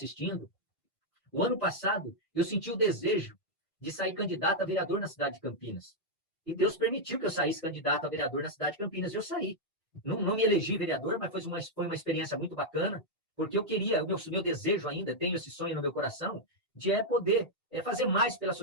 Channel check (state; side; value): normal; both; correlation -0.03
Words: O ano passado, eu senti o desejo de sair candidato a vereador na cidade de Campinas. E Deus permitiu que eu saísse candidato a vereador na cidade de Campinas. Eu saí. Não me elegi vereador, mas foi uma experiência muito bacana, porque eu queria, o meu desejo ainda, tenho esse sonho no meu coração, de poder fazer mais pela